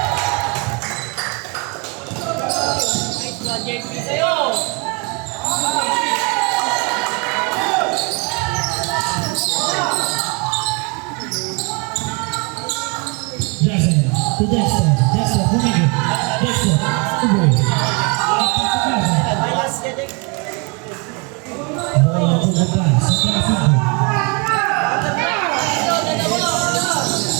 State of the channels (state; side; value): quieter; left; 31.7 dB